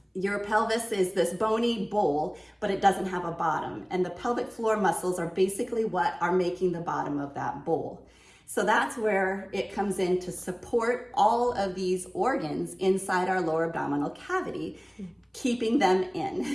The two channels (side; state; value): both; identical; correlation 1.00